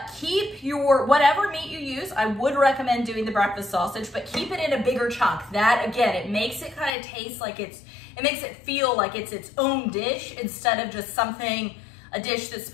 keep your, whatever meat you use, I would recommend doing the breakfast sausage, but keep it in a bigger chunk. That, again, it makes it kind of taste like it makes it feel like it's its own dish instead of just a dish that's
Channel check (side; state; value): right; drops out; at 6.9 s